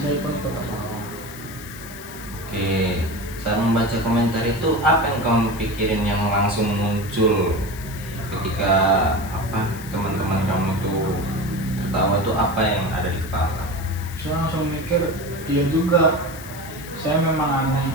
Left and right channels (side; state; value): left; noise; hiss, 16 dB below the sound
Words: saya pun ikut tertawa. oke, saat membaca komentar itu apa yang kamu pikirin yang langsung muncul ketika teman-teman kamu tuh tertawa tuh apa yang ada di kepala kamu? Saya langsung mikir, iya juga, saya memang